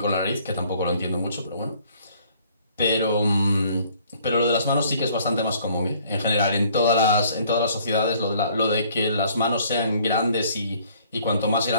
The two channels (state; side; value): inverted; both; correlation -0.59